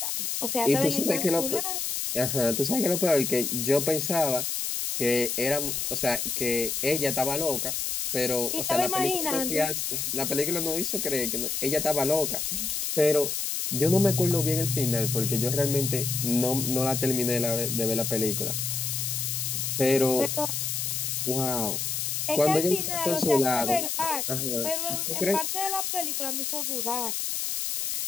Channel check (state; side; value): noise; left; hiss, 1 dB below the sound